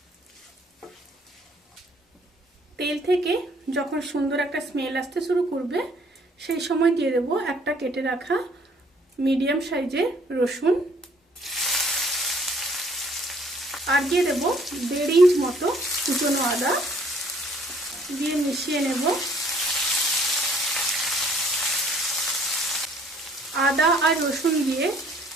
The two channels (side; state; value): both; normal; correlation 0.61